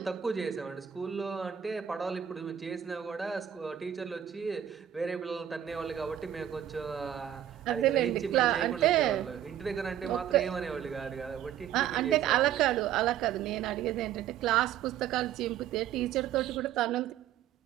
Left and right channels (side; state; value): left; quieter; 10.4 dB